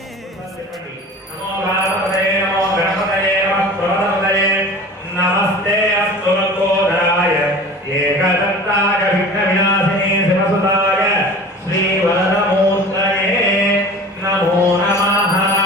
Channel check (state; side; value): normal; both; correlation 0.39